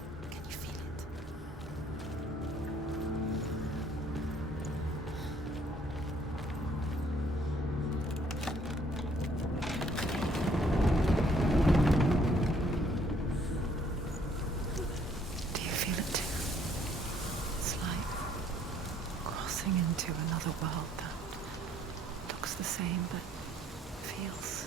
Can you feel it? Do you feel it too? It's like crossing into another world that looks the same but feels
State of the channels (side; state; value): both; normal; correlation 0.63